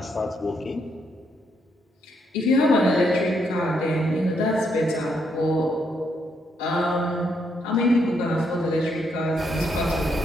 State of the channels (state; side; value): normal; both; correlation 0.76